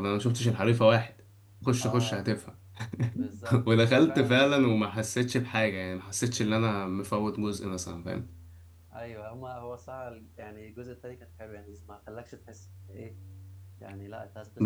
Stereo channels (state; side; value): identical; both; correlation 1.00